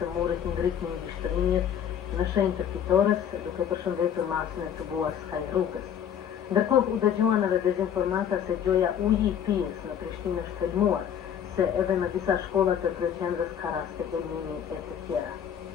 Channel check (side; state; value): right; quieter; 9.0 dB